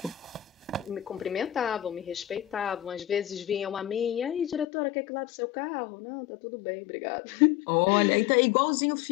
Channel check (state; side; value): drops out; right; at 4.7 s